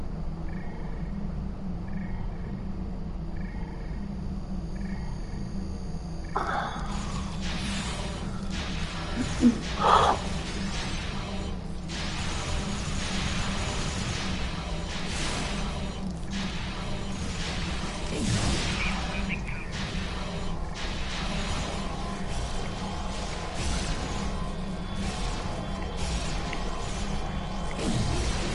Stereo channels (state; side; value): identical; both; correlation 1.00